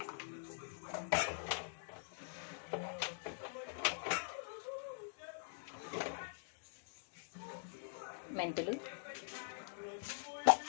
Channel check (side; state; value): right; silent; digital silence